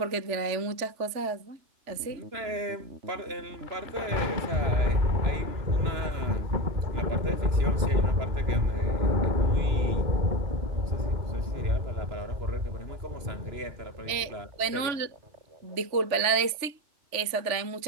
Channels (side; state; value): left; late; 3.4 ms